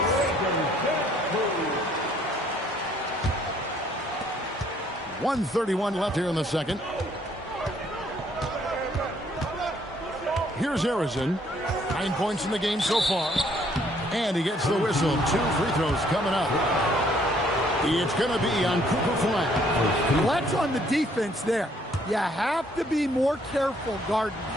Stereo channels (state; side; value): normal; both; correlation 0.64